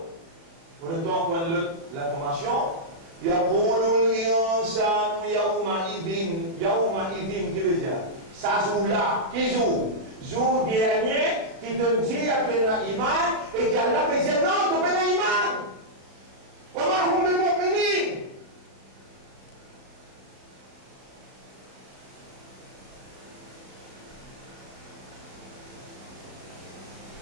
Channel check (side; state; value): left; late; 36 ms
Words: Pour le temps qu'on a l'information, yaqulu al-insanu yawma idhin, qui veut dire ça joue là, qui joue? Jour dernier, qui te dit à tu es iman, et qui Allah peut dire non, tu n'es pas iman. Comment on est mu'minin?